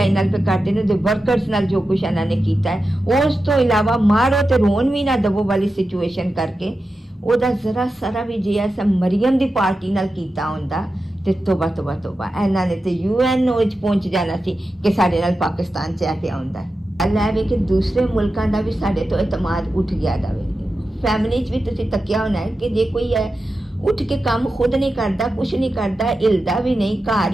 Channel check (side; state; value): both; normal; correlation 0.91